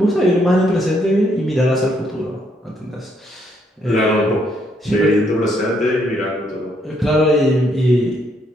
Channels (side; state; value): both; normal; correlation 0.72